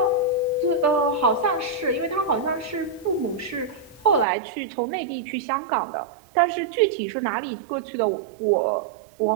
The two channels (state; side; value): drops out; left; at 4.2 s